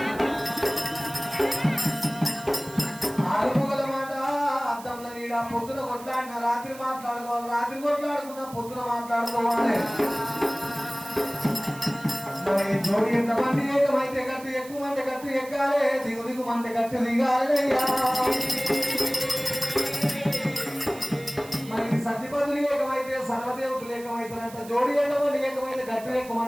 ఆడుకోగల మాట అద్దంలో నీడ పొద్దున కొట్లాడిన రాత్రి మాట్లాడుకోవాలి రాత్రి కొట్లాడుకున్నా పొద్దున మాట్లాడుకోవాలి మరి జోడి ఎంతమంది ఏకమైతే గట్టు ఎక్కువ మంది గట్టు ఎక్కాలి దిగు దిగు మంది గట్టు దిగాలి మరి సతిపదులు ఏకమైతే సర్వదేవతలు ఏకమైతారంట జోడి ఎంతమంది ఏకమైతే గట్టు ఎక్కువ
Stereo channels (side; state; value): right; noise; hiss, 18 dB below the sound